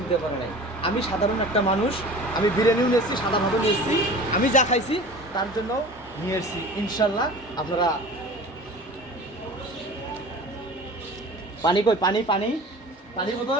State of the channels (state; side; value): normal; both; correlation 0.40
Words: পারে নাই। আমি সাধারণ একটা মানুষ, আমি বিরিয়ানিও নিয়েছি, সাদা ভাতও নিয়েছি, আমি যা খাইছি তার জন্য নিয়ে এসেছি। ইনশাল্লাহ আপনারা পানি কই, পানি পানি পানির